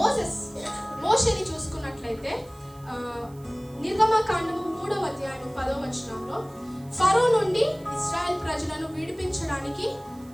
మోషేని చూసుకున్నట్లయితే నిర్గమకాండము 3వ అధ్యాయం 10వ వచనంలో ఫరో నుండి ఇశ్రాయేల్ ప్రజలను విడిపించడానికి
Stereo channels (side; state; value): right; noise; hiss, 26 dB below the sound